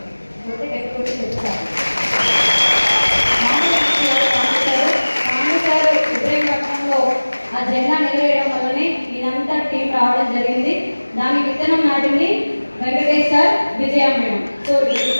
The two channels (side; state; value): both; inverted; correlation -1.00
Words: ఇబ్రహీంపట్నంలో ఆ జెండా నిలవేయడం వల్లనే ఇదంతా టీం రావడం జరిగింది. దాని విత్తనం నాటింది వెంకటేష్ సార్, విజయ మేడం. సో